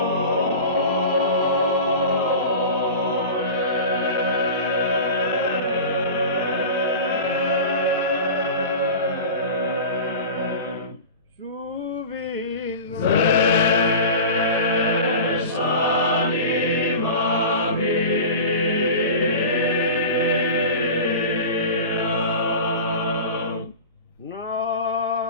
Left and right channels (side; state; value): both; inverted; correlation -0.33